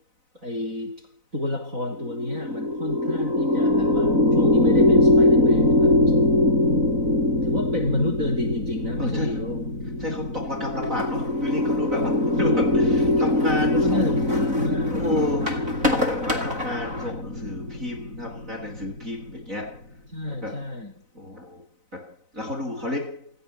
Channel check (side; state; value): left; late; 4.0 ms